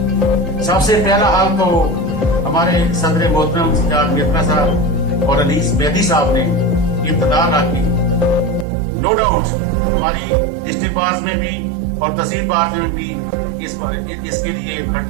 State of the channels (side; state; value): left; drops out; at 8.7 s